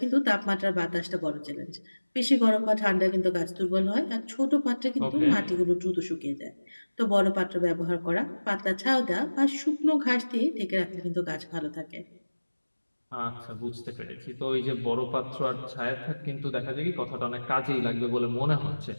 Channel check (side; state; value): both; inverted; correlation -1.00